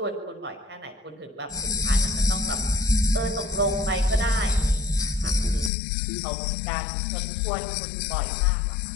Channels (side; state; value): right; drops out; at 5.7 s